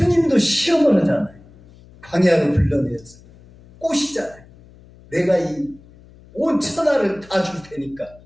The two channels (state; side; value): noise; left; hum, 24 dB below the sound